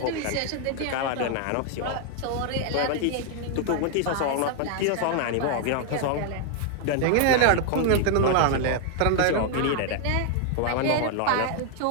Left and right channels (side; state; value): both; different; correlation 0.00